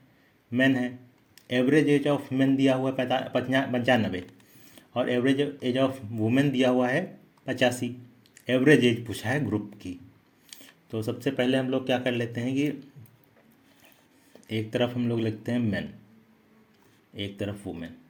मैन है, एवरेज एज ऑफ मैन दिया हुआ है 95 और एवरेज एज ऑफ वुमेन दिया हुआ है 85। एवरेज एज पूछा है ग्रुप की। तो सबसे पहले हम लोग क्या कर लेते हैं कि एक तरफ हम लोग लिखते हैं मैन, एक तरफ वुमेन,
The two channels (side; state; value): both; identical; correlation 1.00